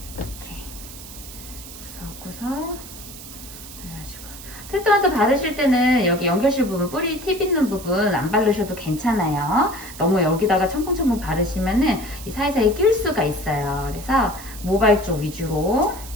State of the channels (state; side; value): noise; right; hiss, 14 dB below the sound